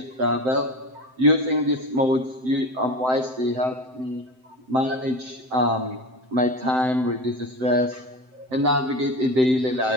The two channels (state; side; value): late; left; 7.8 ms